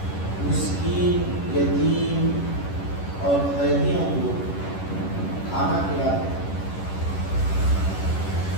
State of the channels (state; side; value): late; right; 11 ms